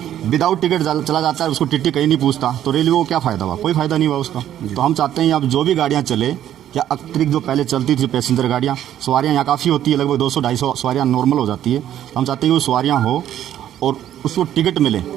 विदाउट टिकट चला जाता है, उसको टिकट कहीं नहीं पूछता, तो रेलवे को क्या फ़ायदा हुआ? कोई फ़ायदा नहीं हुआ उसका। तो हम चाहते हैं अब जो भी गाड़ियाँ चले, या अतिरिक्त जो पहले चलती थी पैसेंजर गाड़ियाँ, सवारियाँ यहाँ काफ़ी होती है, लगभग 200-250 सवारियाँ नॉर्मल हो जाती है। हम चाहते हैं कि वो सवारियाँ हो और उसको टिकट मिले,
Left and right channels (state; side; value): quieter; left; 11.3 dB